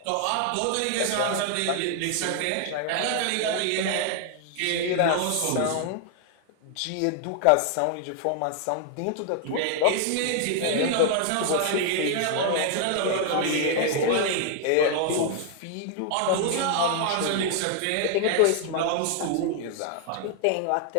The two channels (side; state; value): both; different; correlation 0.00